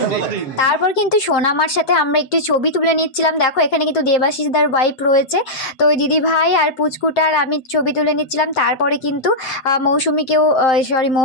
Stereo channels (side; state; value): right; late; 7.7 ms